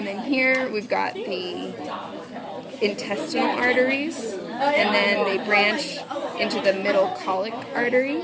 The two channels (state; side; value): identical; both; correlation 1.00